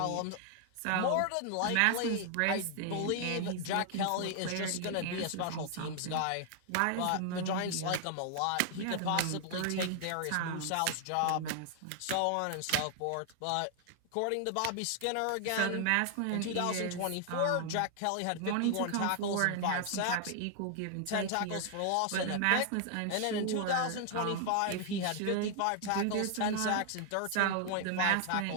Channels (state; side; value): different; both; correlation 0.00